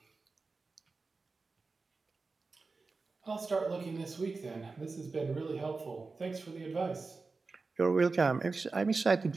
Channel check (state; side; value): quieter; left; 4.0 dB